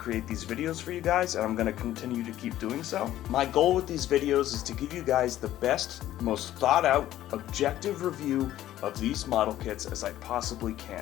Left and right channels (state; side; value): quieter; right; 13.3 dB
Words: these videos for you guys, and I'm going to continue to keep doing so. My goal with these videos is to give you guys the best, most thought out, objective review of these model kits as I possibly